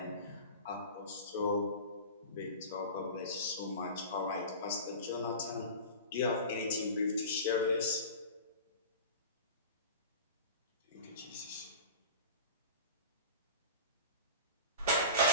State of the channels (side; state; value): both; inverted; correlation -0.35